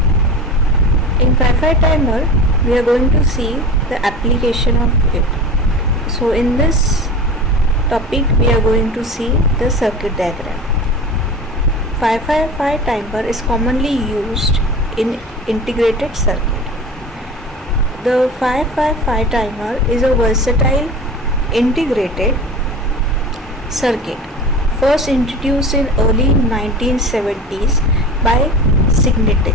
In 555 timer, we are going to see the application of it. So in this topic, we are going to see the circuit diagram. 555 timer is commonly used in integrated circuit. The 555 timer is a versatile integrated circuit first introduced in early 1970s by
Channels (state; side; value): normal; both; correlation 0.33